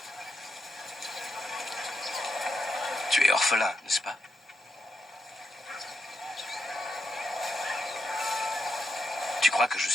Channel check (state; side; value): normal; both; correlation 0.84